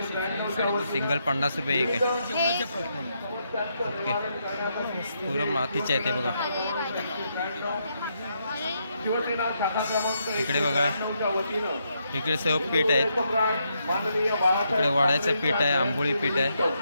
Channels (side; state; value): both; inverted; correlation -0.79